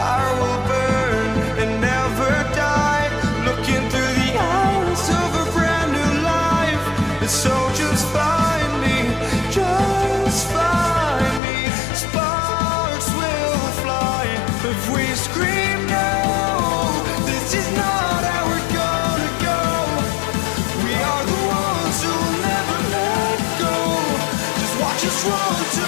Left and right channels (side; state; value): right; drops out; at 11.4 s